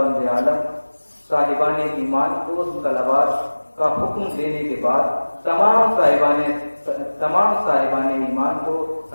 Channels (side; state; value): both; inverted; correlation -1.00